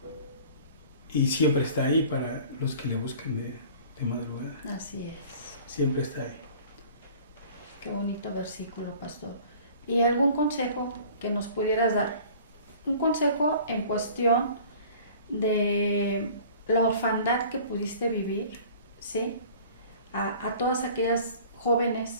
Y siempre está ahí para los que le buscan de de madrugada. Así es. Siempre está ahí. Qué bonito versículo, pastor. ¿Y algún consejo que nos pudieras dar? Un consejo en cuestión de la orfandad que pudiste vivir, ¿sí? A todas aquellas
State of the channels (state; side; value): inverted; both; correlation -0.47